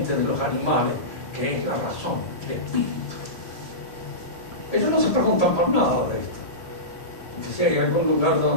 de los animales, que es la razón, el espíritu. Ellos no se preguntan por nada de esto, porque si hay algún lugar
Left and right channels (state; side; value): late; right; 1.8 ms